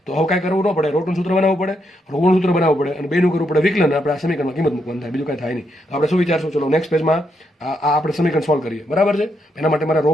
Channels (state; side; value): normal; both; correlation 0.79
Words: તો હવે કાંઈ કરવું ન પડે, રોટનું સૂત્ર બનાવવું પડે, રોનું સૂત્ર બનાવવું પડે અને બેનું કરવું પડે વિકલન. આપણે આ સમીકરણમાં કિંમત મૂકવાનું થાય, બીજું કાંઈ થાય નહીં. તો આપણે શું વિચારશું? ચલો નેક્સ્ટ પેજમાં આ આપણે સમીકરણ સોલ્વ કરીએ. બરાબર છે? એના માટે મારે રો